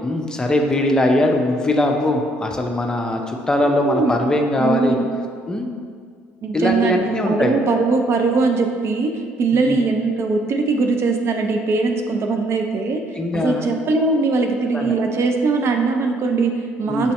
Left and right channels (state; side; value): normal; both; correlation 0.68